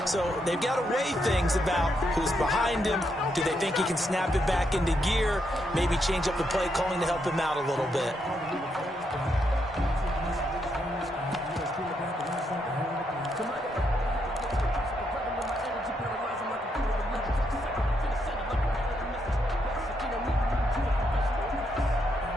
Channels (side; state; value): both; normal; correlation 0.79